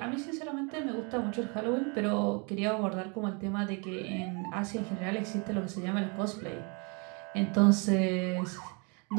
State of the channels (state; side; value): quieter; left; 33.3 dB